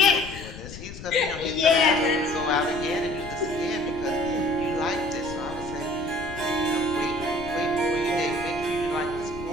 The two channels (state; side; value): noise; left; rumble, 13 dB below the sound